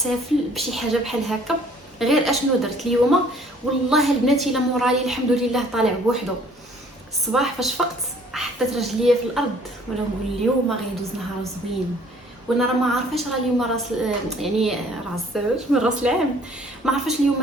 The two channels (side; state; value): both; normal; correlation 0.57